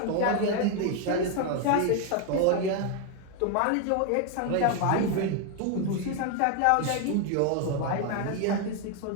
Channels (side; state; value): both; different; correlation 0.01